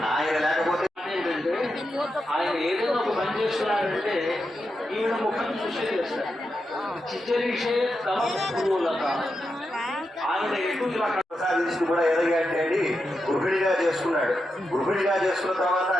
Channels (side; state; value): both; normal; correlation 0.87